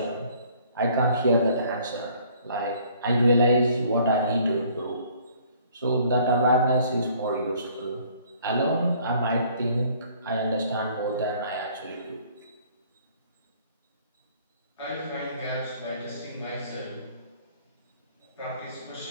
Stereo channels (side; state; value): both; inverted; correlation -0.58